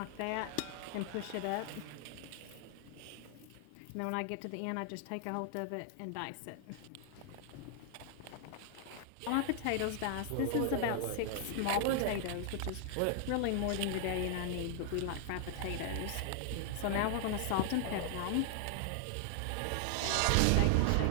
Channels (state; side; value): different; both; correlation 0.00